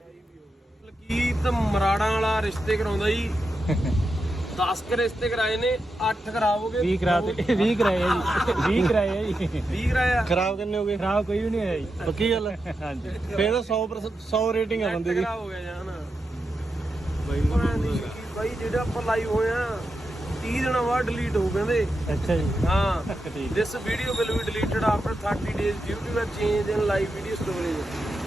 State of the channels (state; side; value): normal; both; correlation 0.88